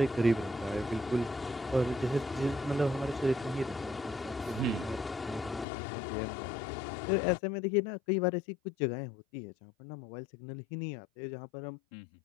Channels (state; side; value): drops out; right; at 5.7 s